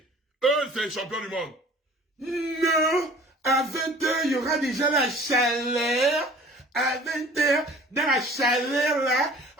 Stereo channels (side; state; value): both; normal; correlation 0.48